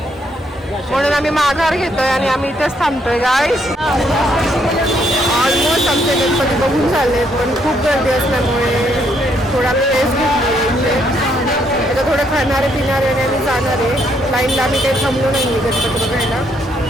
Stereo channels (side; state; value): both; normal; correlation 0.72